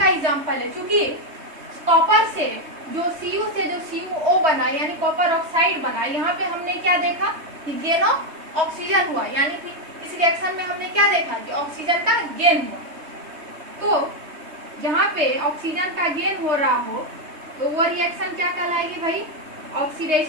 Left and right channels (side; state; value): left; late; 3.2 ms